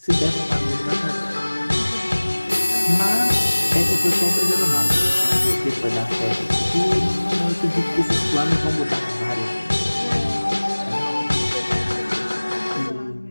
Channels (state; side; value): inverted; both; correlation -1.00